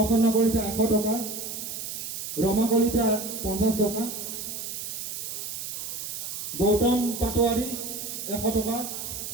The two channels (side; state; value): right; noise; hiss, 6 dB below the sound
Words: কলিতা 100 টকা, ৰমা কলিতা 50 টকা, গৌতম পাটোৱাৰী 100 টকা,